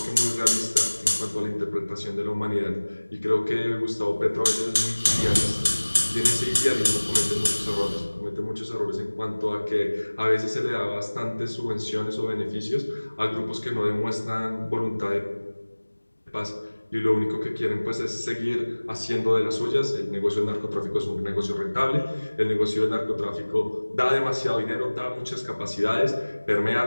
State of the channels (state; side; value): inverted; both; correlation -1.00